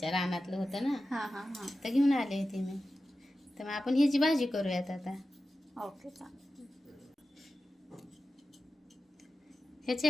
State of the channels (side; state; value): both; normal; correlation 0.93